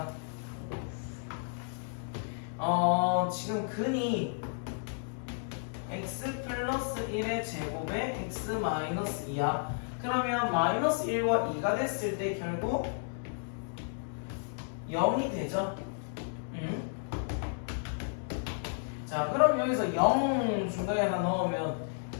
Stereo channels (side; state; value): right; silent; digital silence